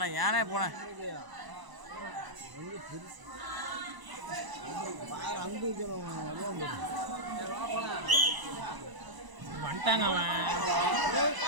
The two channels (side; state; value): left; late; 1.0 ms